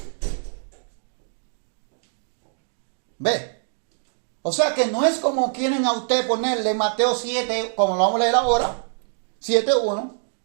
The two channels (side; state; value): left; silent; 60 dB below the other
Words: ¿Ve? O sea que no es como quieren a usted ponerle Mateo 7, como lo vamos a leer ahora, 7:1,